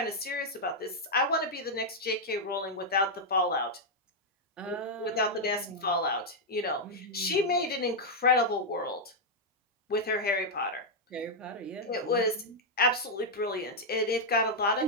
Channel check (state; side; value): normal; both; correlation -0.02